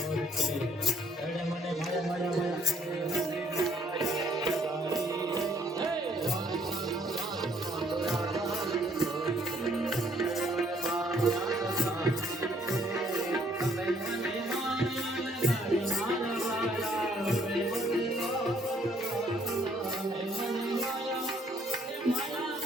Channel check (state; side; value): normal; both; correlation 0.65